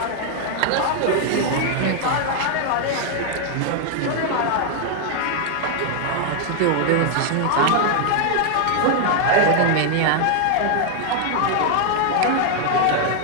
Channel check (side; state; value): both; different; correlation 0.00